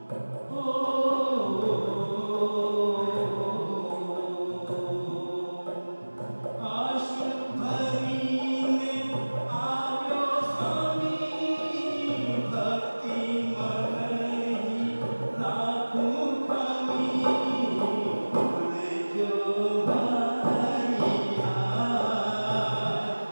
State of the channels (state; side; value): inverted; both; correlation -1.00